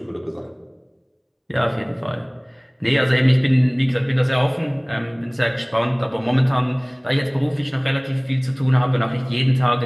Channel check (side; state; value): both; identical; correlation 1.00